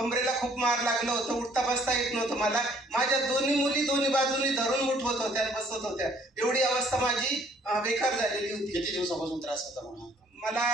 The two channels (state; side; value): normal; both; correlation 0.61